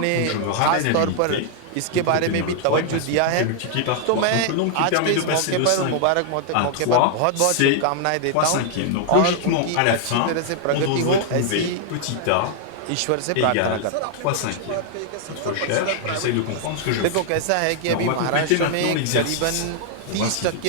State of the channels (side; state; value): both; different; correlation 0.00